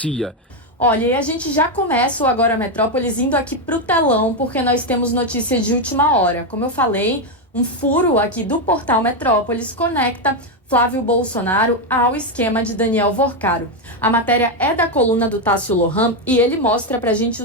Olha, e a gente já começa o Agora Metrópolis indo aqui para o telão, porque nós temos notícia de última hora. Como eu falei, um furo aqui do portal Metrópolis conecta Flávio Bolsonaro ao esquema de Daniel Vorcaro. A matéria é da coluna do Tássio Lohan e ele mostra pra gente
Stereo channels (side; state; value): both; normal; correlation 0.06